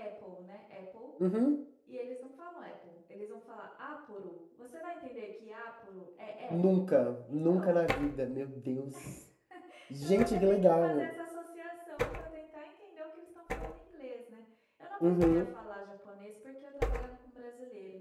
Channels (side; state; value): both; identical; correlation 1.00